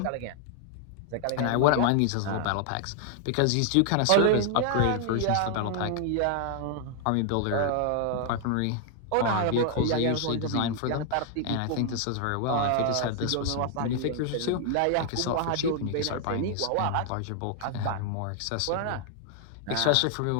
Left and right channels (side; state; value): both; different; correlation 0.00